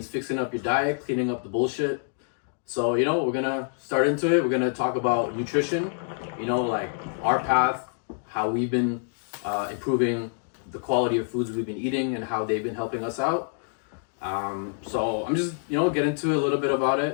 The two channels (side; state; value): right; silent; digital silence